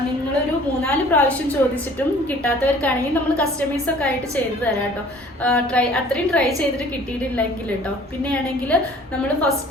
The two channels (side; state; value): both; normal; correlation 0.51